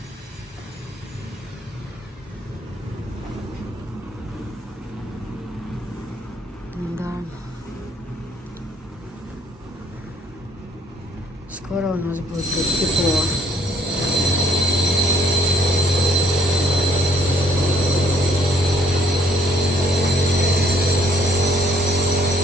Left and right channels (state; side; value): normal; both; correlation 0.63